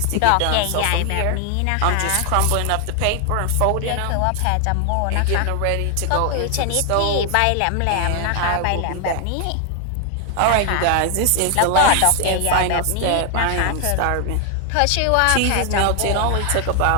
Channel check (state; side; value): different; both; correlation 0.00